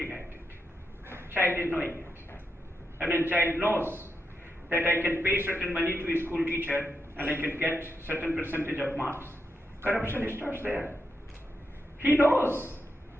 at it. Child is knowing it. And when child knows that I can pay certain money to a school teacher and I can get certain percentage of marks, corruption starts there. He knows.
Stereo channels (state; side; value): normal; both; correlation 0.84